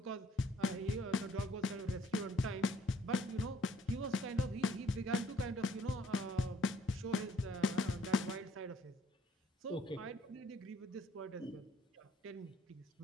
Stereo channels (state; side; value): normal; both; correlation 0.62